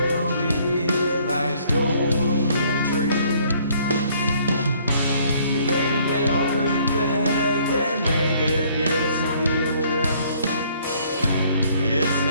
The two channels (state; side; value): inverted; both; correlation -0.62